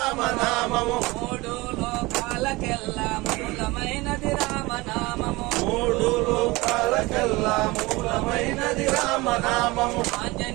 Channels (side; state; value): left; quieter; 22.2 dB